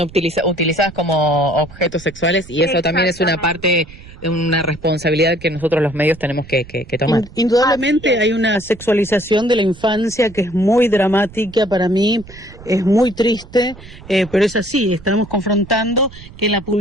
como objetos sexuales, y eso también es una parte, una responsabilidad que nosotros los medios tenemos que tomar. Indudablemente hay una sexualización de la infancia que es muy dramática para mí, es muy triste, pero es así, estamos confrontando que en las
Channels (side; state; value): right; noise; rumble, 19 dB below the sound